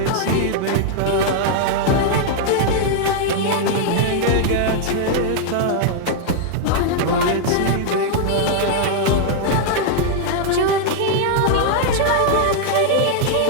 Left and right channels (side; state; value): both; different; correlation -0.01